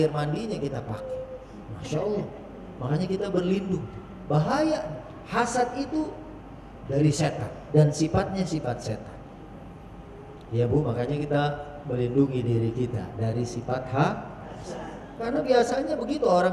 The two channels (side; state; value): both; identical; correlation 1.00